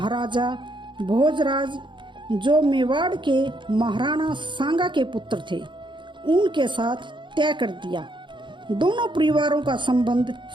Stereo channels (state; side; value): late; left; 0.23 ms